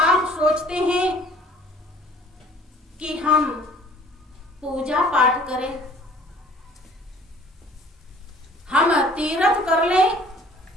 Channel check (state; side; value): normal; both; correlation 0.52